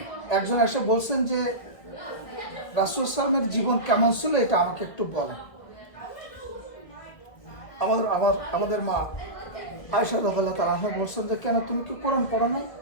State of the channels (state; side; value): late; right; 2.1 ms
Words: একজন এসে বলছেন যে রাসূল সাল্লামের জীবন কেমন ছিল এটা আমাকে একটু বলেন। আমাদের মা আয়েশা রাদিয়াল্লাহু তাআলা আনহা বলছেন যে কেন, তুমি কি কোরআন পড়ো নাই?